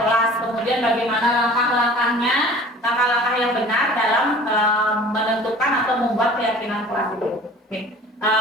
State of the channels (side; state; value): both; normal; correlation 0.45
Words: kemudian bagaimana langkah-langkahnya, langkah-langkah yang benar dalam menentukan atau membuat keyakinan kelas itu. Oke.